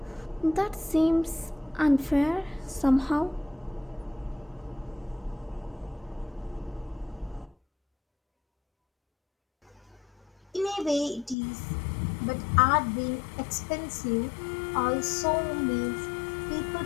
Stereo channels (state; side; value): drops out; right; at 11.4 s